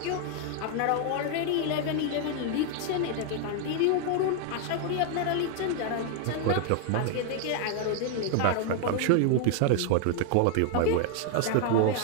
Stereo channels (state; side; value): different; both; correlation 0.00